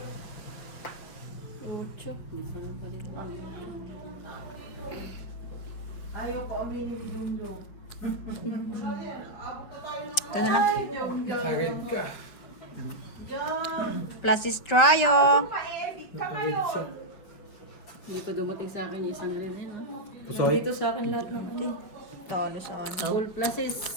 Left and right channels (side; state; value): right; late; 5.5 ms